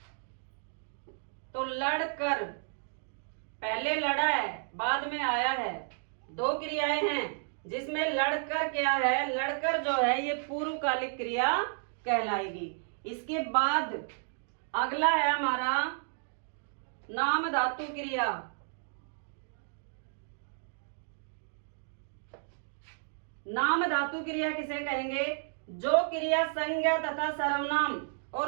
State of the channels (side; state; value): left; silent; digital silence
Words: तो लड़कर पहले लड़ा है बाद में आया है, दो क्रियाएं हैं जिसमें लड़कर क्या है? लड़कर जो है ये पूर्वकालिक क्रिया कहलाएगी। इसके बाद अगला है हमारा नाम धातु क्रिया। नाम धातु क्रिया किसे कहेंगे? जो क्रिया संज्ञा तथा सर्वनाम